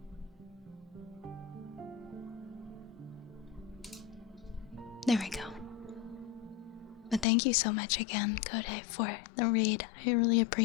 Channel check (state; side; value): drops out; right; at 7.2 s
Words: There we go. But thank you so much again, Kodai, for the raid. I really